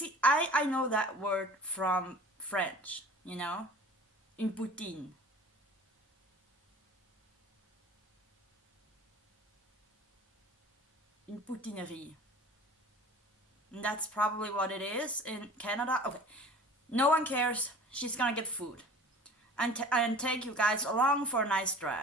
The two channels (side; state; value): both; normal; correlation 0.44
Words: I know that word from French, une poutine. Une poutinerie. And that's probably what it is in Canada. Okay, no one cares. She's gonna get food and take you guys along for a nice